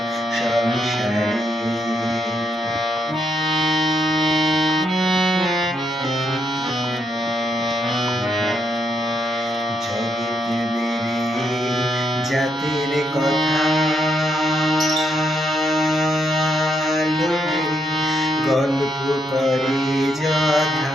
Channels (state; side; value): normal; both; correlation 0.77